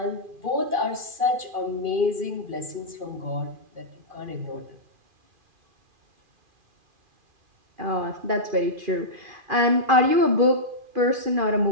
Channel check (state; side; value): late; left; 2.4 ms